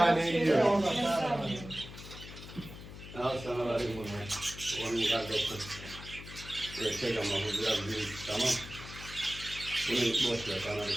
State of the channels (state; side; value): noise; left; hum, 13 dB below the sound